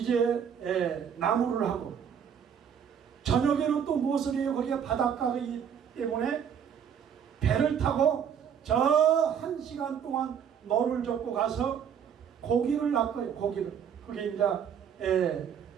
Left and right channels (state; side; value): quieter; left; 8.0 dB